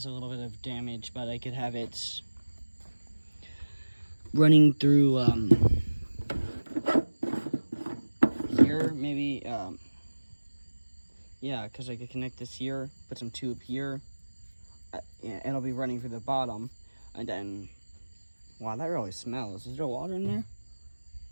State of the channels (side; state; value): both; inverted; correlation -1.00